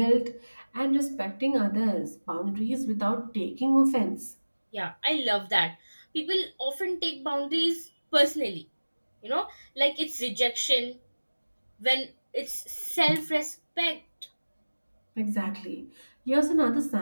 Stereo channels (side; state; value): both; inverted; correlation -1.00